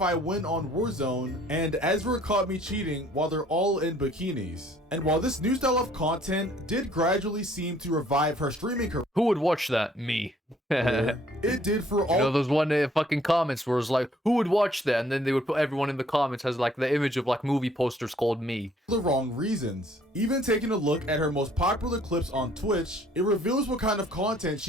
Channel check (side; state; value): both; normal; correlation 0.60